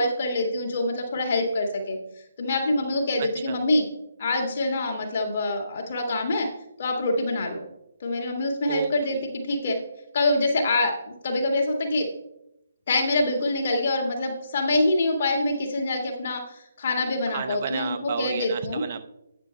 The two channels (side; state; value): both; inverted; correlation -0.77